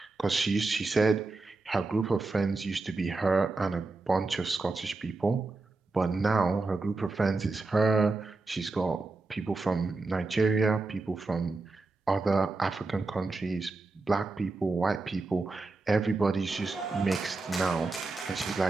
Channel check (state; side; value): quieter; left; 3.5 dB